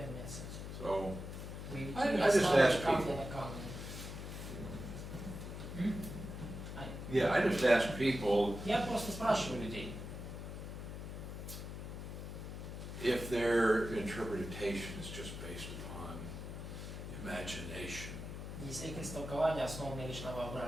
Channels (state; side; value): noise; left; hum, 8 dB below the sound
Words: нет с этим. So, Вы I не just ставите ask камни people. на камни. yeah, I just ask people Я просто спрашиваю людей, if their interpretation is just based upon imagination, если их истолкование основано лишь на